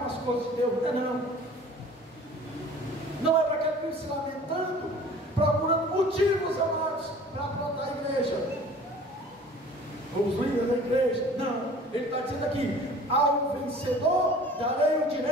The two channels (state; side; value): normal; both; correlation 0.47